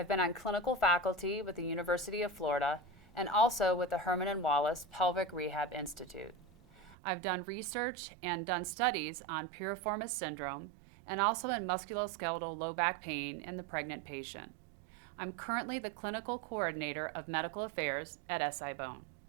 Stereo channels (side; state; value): left; drops out; at 7.0 s